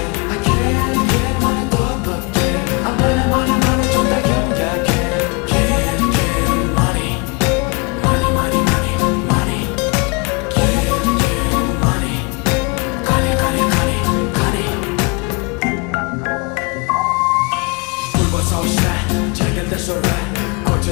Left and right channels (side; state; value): right; quieter; 30.0 dB